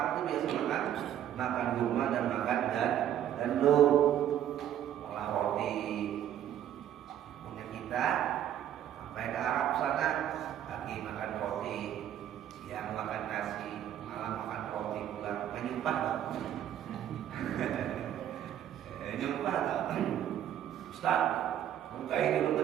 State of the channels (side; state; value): left; quieter; 10.8 dB